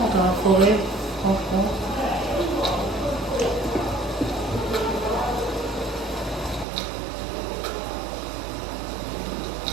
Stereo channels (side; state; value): left; drops out; at 6.7 s